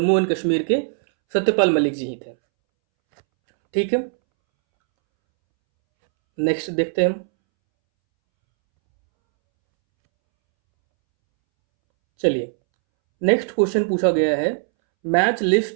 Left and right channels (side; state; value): left; silent; 66 dB below the other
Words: एंड कश्मीर के सत्यपाल मलिक जी ही थे। ठीक है, नेक्स्ट देखते हैं हम। चलिए, नेक्स्ट क्वेश्चन पूछा गया है, match